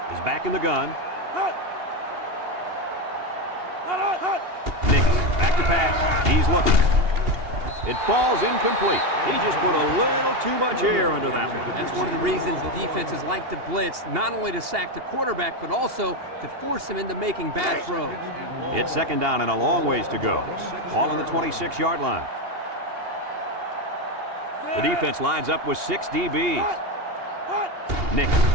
is back in the gun. Nix back to pass. He's looking. It falls incomplete. He just put a little too much air under that one. That's one of the reasons defenses like to blitz, not only to sack the quarterback, but also to force him into making bad throws. It's second down and a long ways to go. Ball on the 26-yard line. The defense lines up with 6 DBs. Nix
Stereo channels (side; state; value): left; late; 2.8 ms